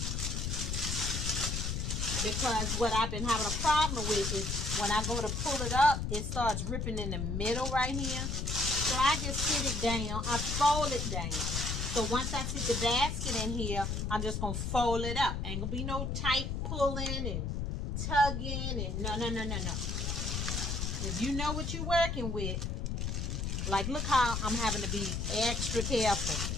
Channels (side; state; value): left; noise; rumble, 2 dB below the sound